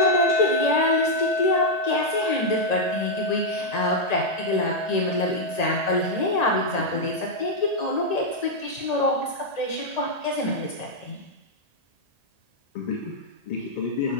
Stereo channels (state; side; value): late; right; 1.8 ms